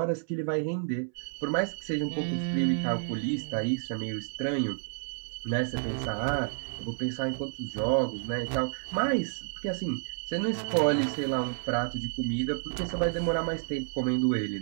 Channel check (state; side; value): silent; left; 58 dB below the other